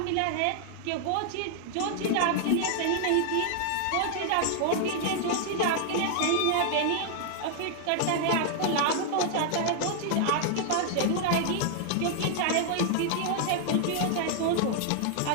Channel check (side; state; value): both; different; correlation 0.00